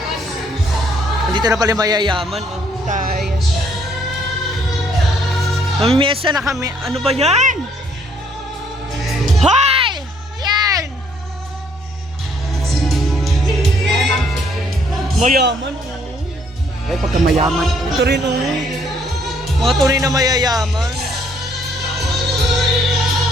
Dito na pala mayayaman. Oh. Tayo. Mamimiesa na kami. Ano ba yan? Hoy! Yan! Mayaman. Oh. Ay, pagka mayaman. Ito rin oh. Mga tunay na mayayaman.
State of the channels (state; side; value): normal; both; correlation 0.66